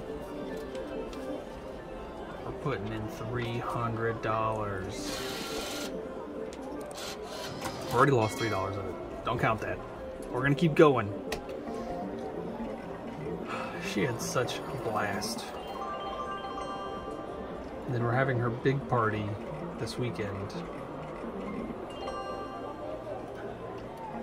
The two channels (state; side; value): identical; both; correlation 1.00